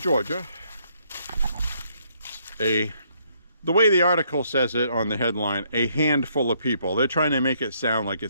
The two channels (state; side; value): inverted; both; correlation -0.70